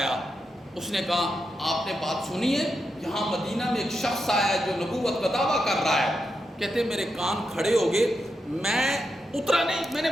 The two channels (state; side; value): normal; both; correlation 0.85